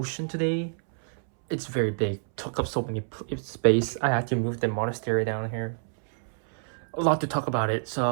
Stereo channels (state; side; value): silent; left; 60 dB below the other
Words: today. It's very big, took up so many space. I had to move the monastery down here. A lot to talk about it,